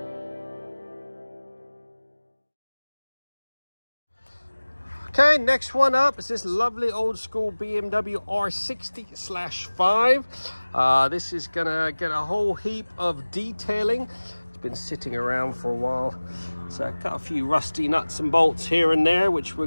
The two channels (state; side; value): inverted; both; correlation -1.00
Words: next one up is this lovely old school BMW R60/5. This is gonna get a whole heap of detailing. It's been sitting around for a while. So got a few rusty nuts and bolts here and there, which we're